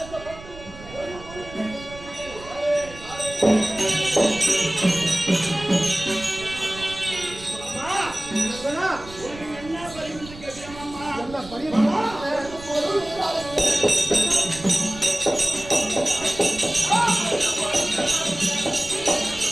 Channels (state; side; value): noise; right; rumble, 16 dB below the sound